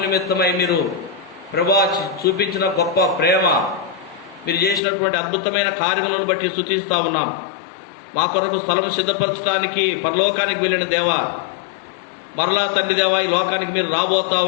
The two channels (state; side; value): drops out; right; at 4.8 s